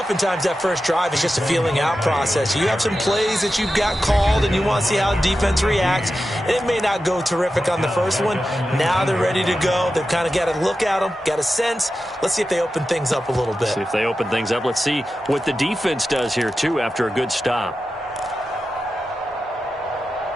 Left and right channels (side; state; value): both; normal; correlation 0.92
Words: that first drive is just a feeling out process. You have some plays that you've got called and you want to see how the defense reacts. And it may not go terrific on the first one. Now they're ready to go. They've kind of got to look at them, got a sense. Let's see if they open things up a little bit. See if they open things up. Let's see what the defense does here, too, after a good stop.